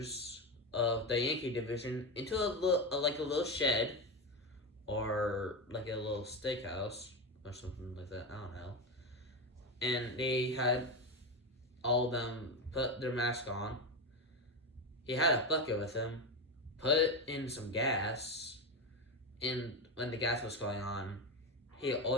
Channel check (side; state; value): both; normal; correlation 0.16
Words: of the Yankee division into a little shed or like a little steakhouse or something like that. I don't know. And they had all of them put their mask on. He had a bucket with him, put in some gas, and when the gas was going on, he